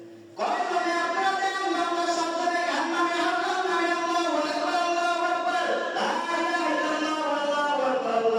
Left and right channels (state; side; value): identical; both; correlation 1.00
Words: কয় জনে আপনারা দেন। আমরা সবজনে গান্নামে আল্লাহ নামে আল্লাহু আকবার, আল্লাহু আকবার, লা ইলাহা ইল্লাল্লাহ আল্লাহু আকবার,